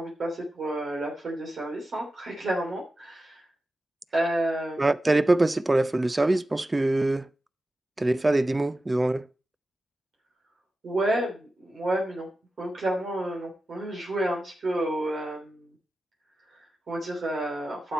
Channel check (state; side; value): normal; both; correlation 0.93